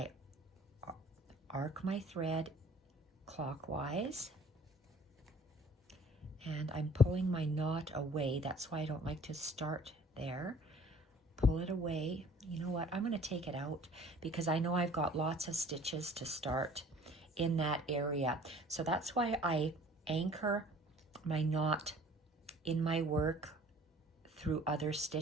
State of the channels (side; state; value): both; normal; correlation 0.51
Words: arc my thread clockwise, and I'm pulling my knot away. That's why I don't like to start there. Pull it away. You know what? I'm going to take it out because I know I've got lots of stitches to start in that area. So that's why I anchor my knot in my work through other